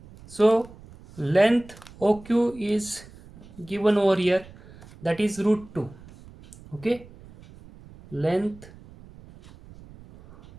So length OQ is given over here, that is root 2. Okay, length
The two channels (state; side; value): noise; right; rumble, 21 dB below the sound